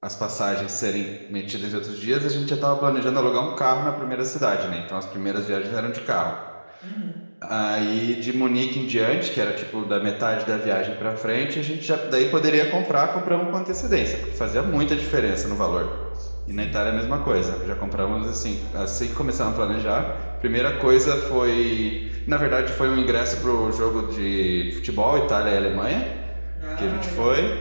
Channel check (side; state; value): both; inverted; correlation -1.00